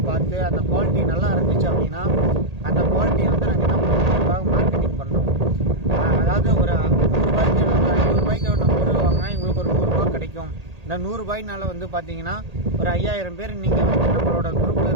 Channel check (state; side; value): late; left; 1.8 ms